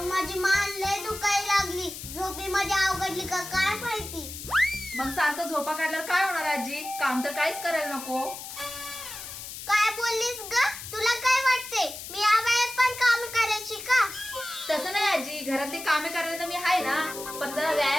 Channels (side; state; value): left; noise; hiss, 10 dB below the sound